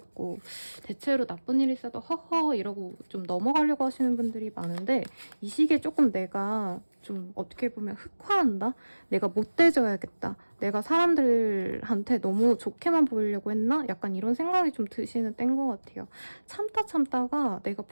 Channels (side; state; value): both; inverted; correlation -1.00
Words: 대체로 나쁜 일 있어도 허허 이러고 좀 넘어가려고 하시는 분들이 많은데 이 시기에 조금 내가 좀 어떻게 보면 흑화한다? 내가 못돼져야겠다. 내가 사람들한테 너무 좋게만 보이려고 했나? 약간 이런 생각이 좀 드시는 때인 것 같아요. 참다가 내가